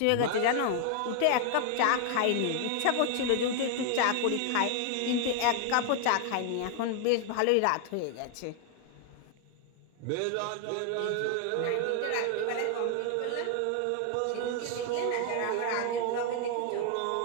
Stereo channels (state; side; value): different; both; correlation 0.00